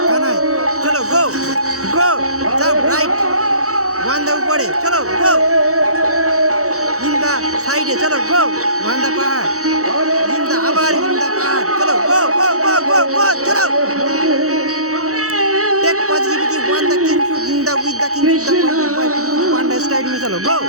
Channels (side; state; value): left; late; 0.65 ms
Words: কানাই, চলো গো গো জাম রাইট ওয়ান্দা উপরে, চলো গো ইন্দা সাইডে, চলো গো ওয়ান্দা পাহাড় ইন্দা আবার ইন্দা পাহাড়, চলো গো গো গো গো গো চলো। Take positivity, one the king should in the with the king should the one the straight में चलो go